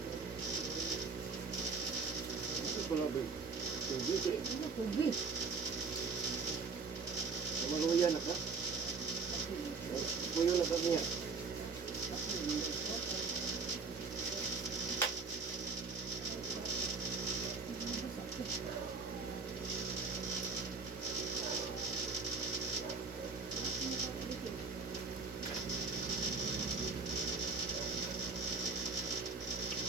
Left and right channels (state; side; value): quieter; left; 4.5 dB